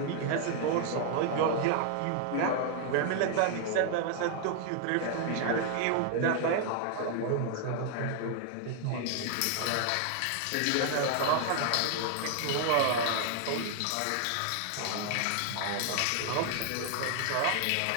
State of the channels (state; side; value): different; both; correlation 0.00